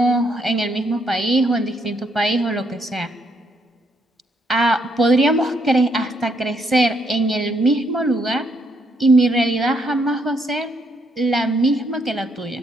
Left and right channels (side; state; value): both; normal; correlation 0.73